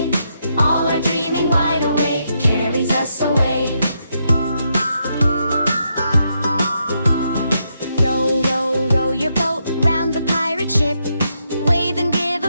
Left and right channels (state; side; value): inverted; both; correlation -0.80